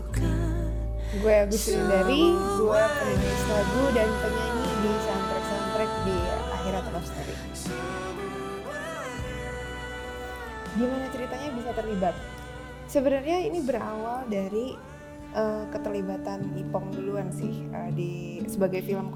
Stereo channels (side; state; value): both; identical; correlation 1.00